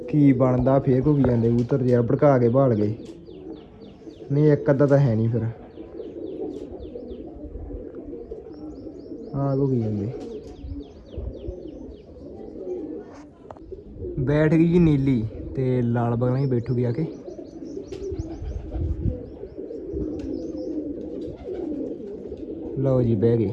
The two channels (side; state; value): both; identical; correlation 1.00